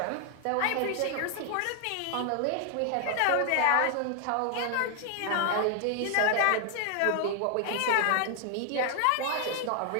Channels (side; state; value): both; different; correlation 0.00